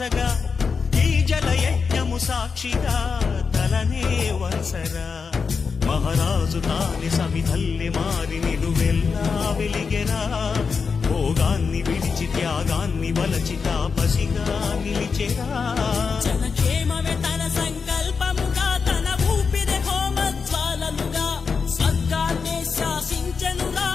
ఈ జల యజ్ఞము సాక్షిగా తలనే వంచరా. మహారాజు తాని సమిధల్లి మారి నిలువెల్లా వెలిగెరా, భోగాన్ని విడిచి త్యాగాన్ని వలచి తాపసిగా నిలిచెరా. జనక్షేమమే తన సంకల్పముగా, తన ఊపిరి హోమజ్వాలలుగా, స్వర్గాన్నే శాసించెనురా,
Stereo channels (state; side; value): quieter; right; 5.4 dB